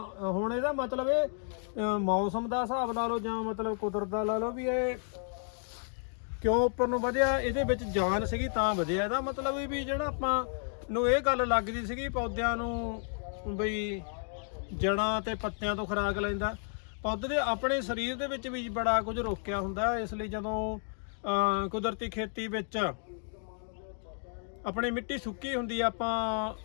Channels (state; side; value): silent; right; 56 dB below the other